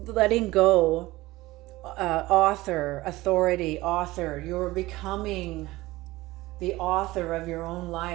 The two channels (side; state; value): left; quieter; 18.9 dB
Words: letting go. Author, authority, author. You're becoming the author of your own